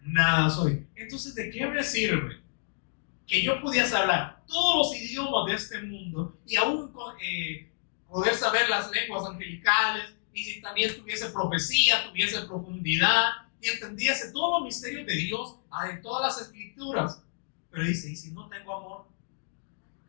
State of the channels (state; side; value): silent; right; digital silence